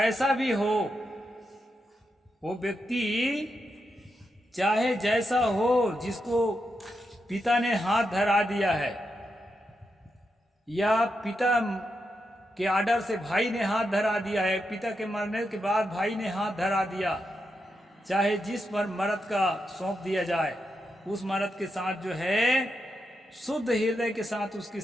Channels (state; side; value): normal; both; correlation 0.85